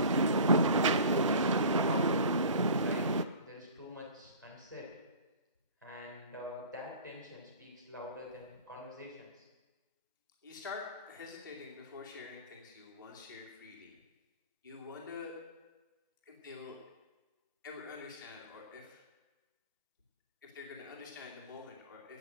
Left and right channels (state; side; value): inverted; both; correlation -0.42